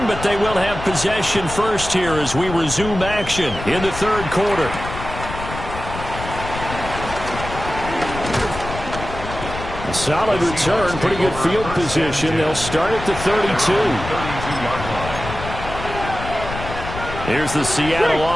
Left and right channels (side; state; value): left; noise; rumble, 9 dB below the sound